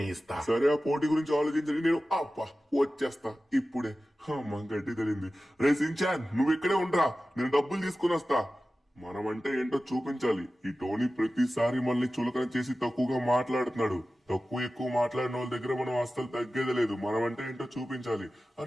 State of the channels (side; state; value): both; normal; correlation 0.95